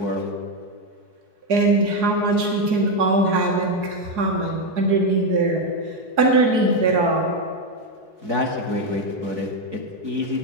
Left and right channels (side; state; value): left; late; 4.7 ms